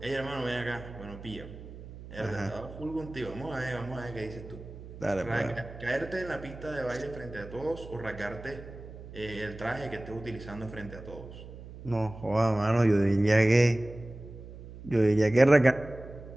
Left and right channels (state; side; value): noise; right; hum, 14 dB below the sound